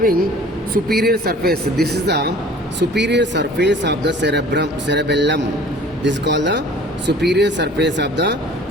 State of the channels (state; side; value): normal; both; correlation 0.48